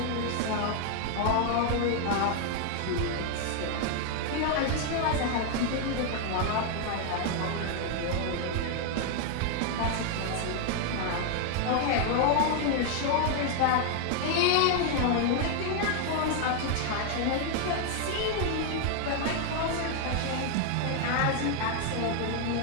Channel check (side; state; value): both; different; correlation 0.00